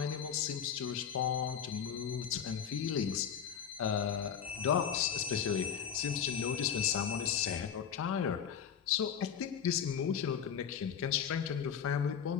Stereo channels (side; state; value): right; quieter; 8.0 dB